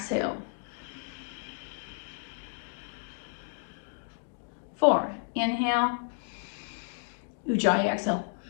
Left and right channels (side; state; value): right; silent; digital silence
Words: 4. Inhale. Ujjayi exhale.